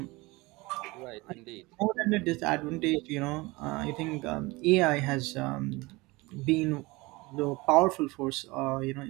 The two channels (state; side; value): quieter; left; 22.8 dB